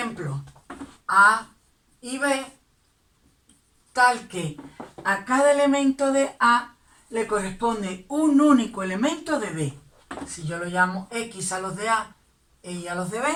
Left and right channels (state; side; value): identical; both; correlation 1.00